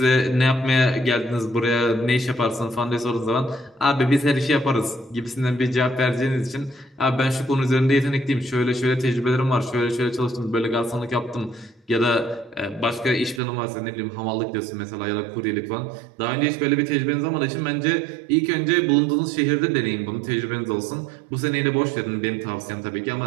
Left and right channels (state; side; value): drops out; left; at 13.4 s